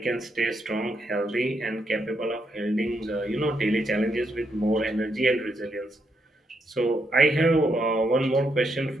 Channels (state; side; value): normal; both; correlation 0.79